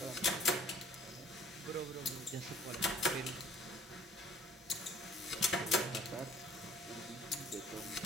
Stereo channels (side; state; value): both; normal; correlation 0.54